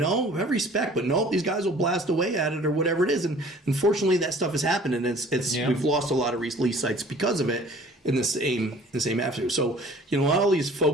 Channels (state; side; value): normal; both; correlation 0.50